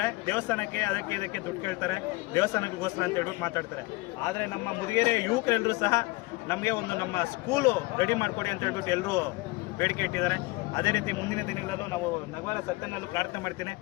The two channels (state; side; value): quieter; right; 23.0 dB